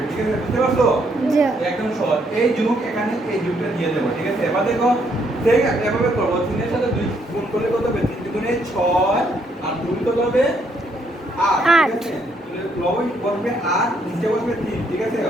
ঠিক আছে, বুঝতে পারছো? একদম সহজ। এই যুগ এখানে এই যুগটা দিয়ে দেবো। ঠিক আছে, এবার দেখো ঠিক এভাবে করবো, 3 এর সাথে 2 গুণ করলে কত হবে, 3 দুগুণে 6 আর 2 কত হবে 8। ঠিক আছে, তাহলে লব বসবে 8, নিচে বসবে 3। ঠিক আছে,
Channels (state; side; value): normal; both; correlation 0.72